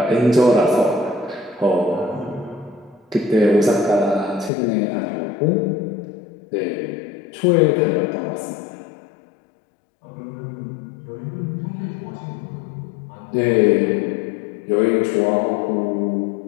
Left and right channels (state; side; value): drops out; right; at 4.5 s